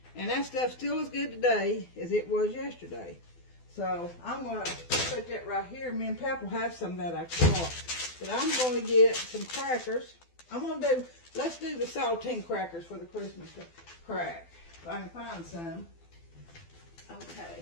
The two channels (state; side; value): late; right; 12 ms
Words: And that stuff still as good today as it was yesterday. So I'm going to put that right here. Me and Pap will have some of that I caught. But I'm going to get some crackers. Let's do the saltine crackers for the Christmas crack. If I can find some.